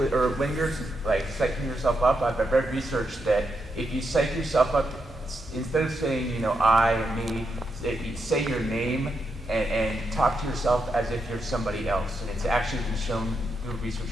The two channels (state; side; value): normal; both; correlation 0.83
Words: or when you're like psyching yourself up, I've read research that if you psych yourself up, instead of saying, you know, I and me, you say your name and talk to yourself as if you're somebody else. And it's actually been shown through research